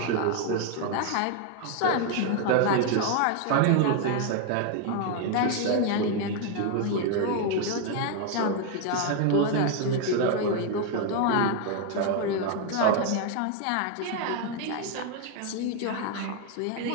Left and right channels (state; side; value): different; both; correlation 0.01